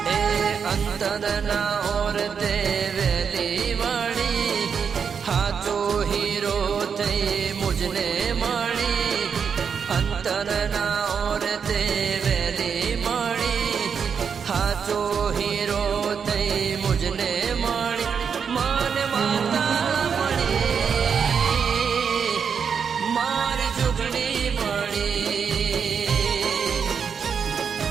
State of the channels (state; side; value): quieter; left; 6.6 dB